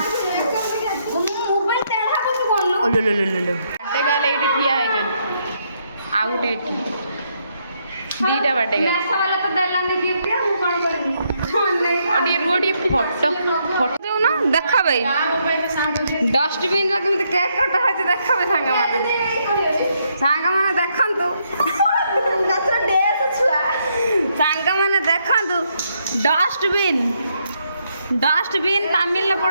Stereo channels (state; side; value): inverted; both; correlation -0.75